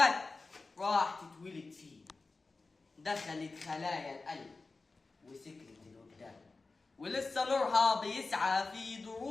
راح تتولد فينا. دخلت خلايا القلب وسكرت الوجدان، ولسه نورها بيسعى في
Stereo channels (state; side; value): quieter; right; 3.8 dB